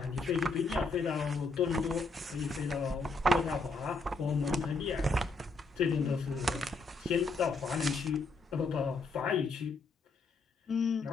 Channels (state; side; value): quieter; right; 3.6 dB